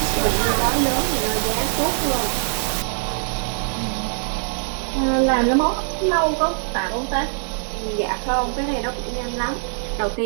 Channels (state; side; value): silent; left; 64 dB below the other